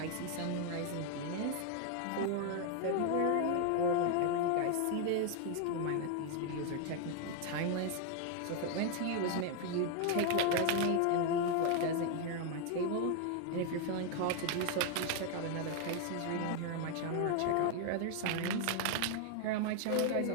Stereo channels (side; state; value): both; different; correlation 0.00